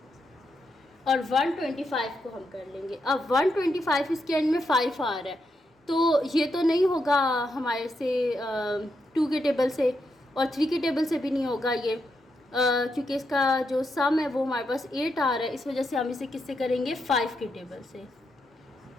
और 125 को हम कर लेंगे। अब 125 इसके एंड में 5 आ रहा है तो ये तो नहीं होगा हमारे से 2 के टेबल से और 3 के टेबल से भी नहीं होगा ये क्योंकि इसका जो सम है वो हमारे पास 8 आ रहा है। इस वजह से हम इसे किससे करेंगे 5 के टेबल से।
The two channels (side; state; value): both; normal; correlation 0.82